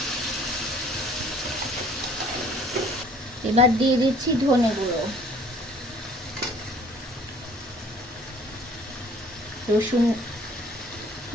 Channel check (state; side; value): normal; both; correlation 0.54